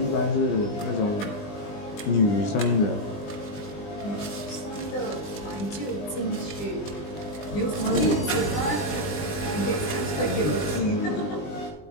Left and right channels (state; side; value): late; right; 20 ms